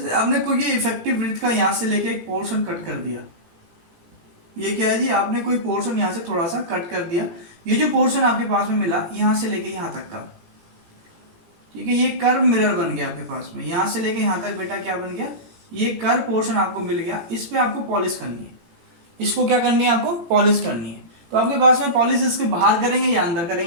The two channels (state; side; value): late; left; 18 ms